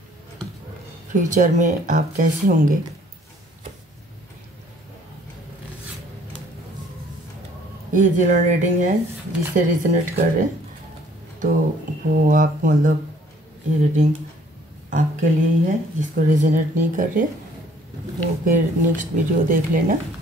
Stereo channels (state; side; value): normal; both; correlation 0.59